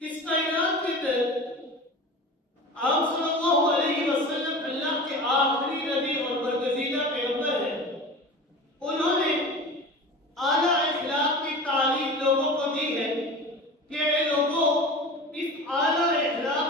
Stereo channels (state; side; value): normal; both; correlation 0.34